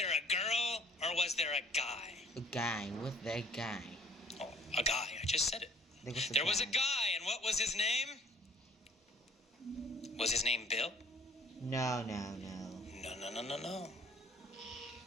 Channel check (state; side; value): normal; both; correlation 0.54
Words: a girl or was there a guy? A guy. Was there a guy? Oh, a guy. I just said it. There was a guy, and what was his name? Was his name Bill? No. No.